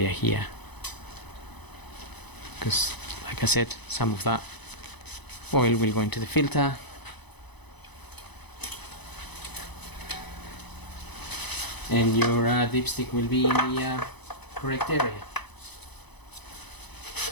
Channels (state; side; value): late; right; 0.99 ms